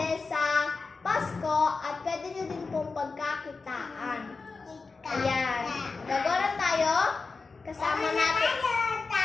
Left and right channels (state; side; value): quieter; right; 4.2 dB